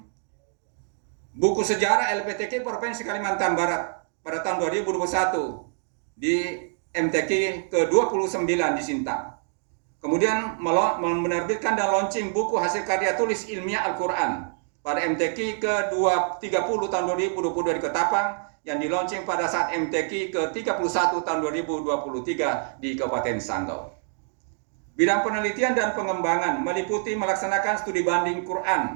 buku sejarah LPTQ Provinsi Kalimantan Barat pada tahun 2021 di MTQ ke-29 di Sintang. Kemudian menerbitkan dan launching buku hasil karya tulis ilmiah Al-Quran pada MTQ ke-30 tahun 2022 di Ketapang, yang di-launching pada saat MTQ ke-31 tahun 2023 di Kabupaten Sanggau. Bidang penelitian dan pengembangan meliputi melaksanakan studi banding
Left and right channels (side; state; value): left; silent; 61 dB below the other